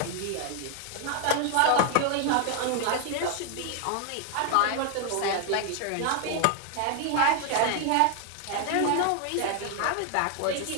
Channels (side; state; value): both; different; correlation 0.00